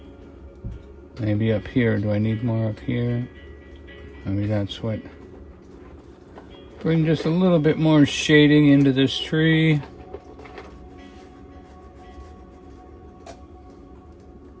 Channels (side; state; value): both; identical; correlation 1.00